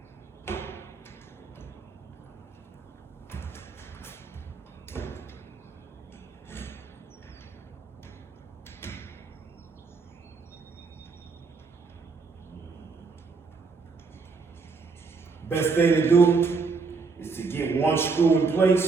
Best thing to do is to get one screw in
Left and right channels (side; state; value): left; quieter; 4.6 dB